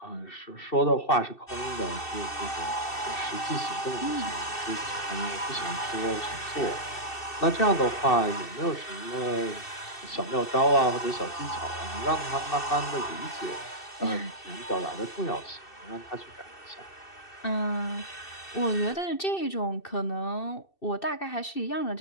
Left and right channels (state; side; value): late; right; 2.6 ms